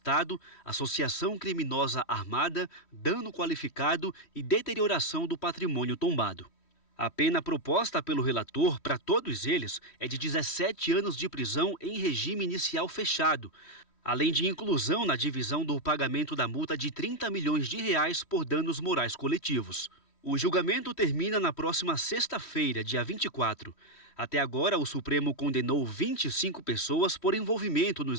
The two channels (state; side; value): late; right; 3.1 ms